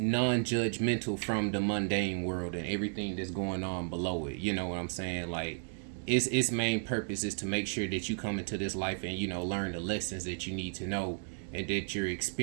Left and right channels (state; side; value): silent; left; digital silence